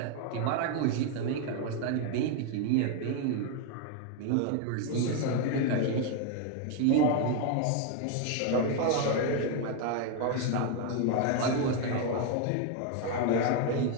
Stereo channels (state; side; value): different; both; correlation 0.01